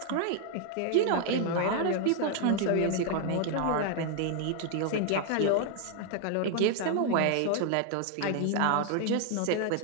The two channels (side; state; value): both; different; correlation 0.00